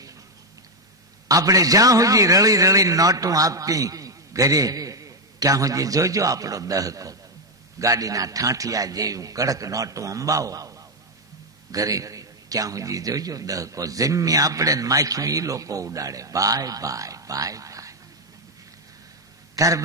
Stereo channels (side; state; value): both; normal; correlation 0.03